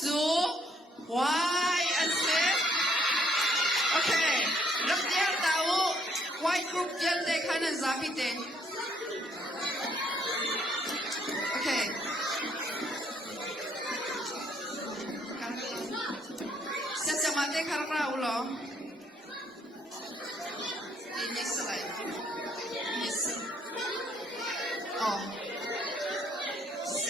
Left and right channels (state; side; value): normal; both; correlation 0.68